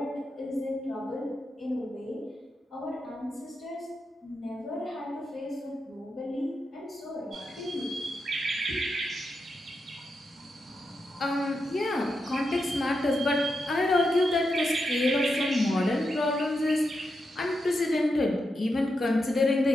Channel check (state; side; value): normal; both; correlation 0.86